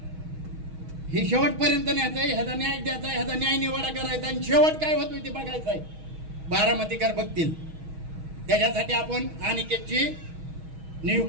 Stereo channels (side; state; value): left; late; 6.3 ms